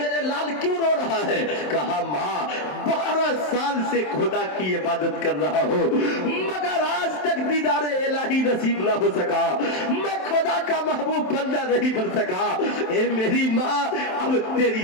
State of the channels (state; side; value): late; right; 27 ms